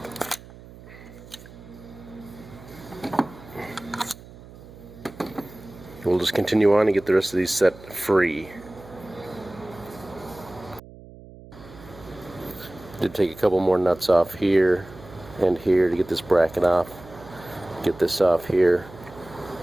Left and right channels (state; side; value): noise; right; hum, 19 dB below the sound